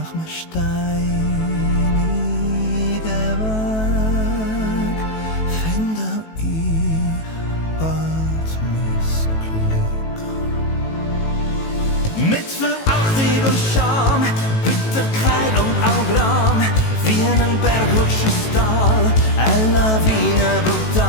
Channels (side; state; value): right; late; 18 ms